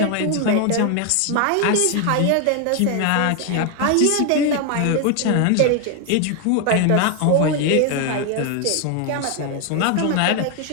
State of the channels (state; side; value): different; both; correlation 0.01